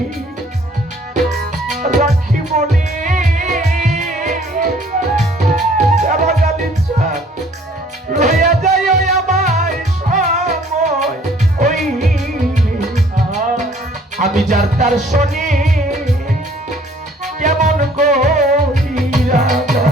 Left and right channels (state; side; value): normal; both; correlation 0.57